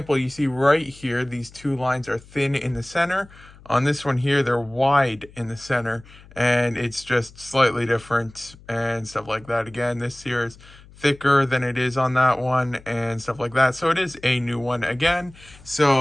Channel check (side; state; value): left; noise; hum, 23 dB below the sound